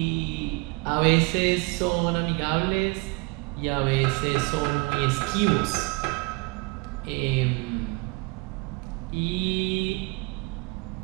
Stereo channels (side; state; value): left; quieter; 27.8 dB